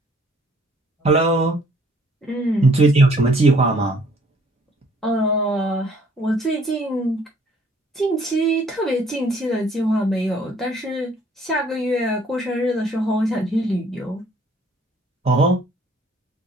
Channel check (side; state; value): both; normal; correlation 0.60